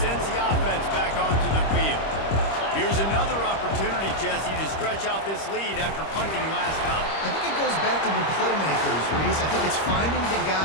sends the offense back onto the field. Here's another opportunity, Jesse, to stretch out this lead after punting last time. I think it goes back to the playmakers, Reese. I think it's finding the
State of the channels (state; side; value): late; right; 25 ms